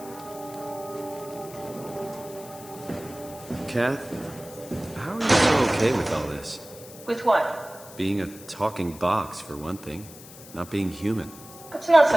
Kath, how are you so okay with all this? With what? Being a talking box, for one thing. Not being human. It's not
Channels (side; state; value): left; noise; hiss, 18 dB below the sound